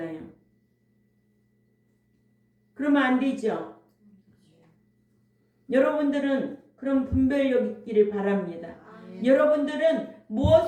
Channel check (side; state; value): both; identical; correlation 1.00